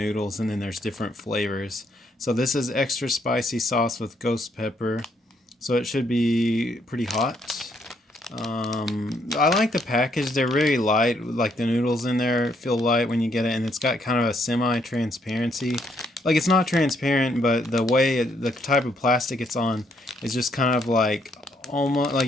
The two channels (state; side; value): normal; both; correlation 0.72